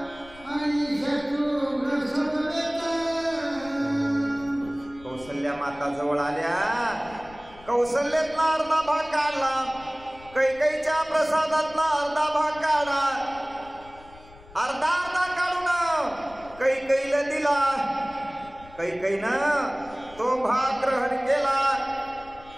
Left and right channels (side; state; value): left; noise; rumble, 22 dB below the sound